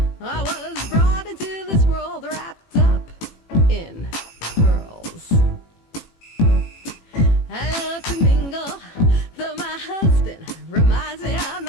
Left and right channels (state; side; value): late; right; 18 ms